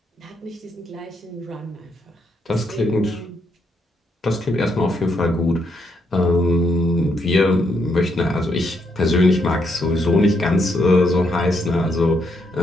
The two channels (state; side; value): normal; both; correlation 0.77